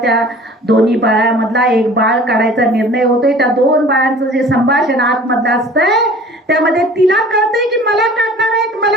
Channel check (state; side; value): normal; both; correlation 0.46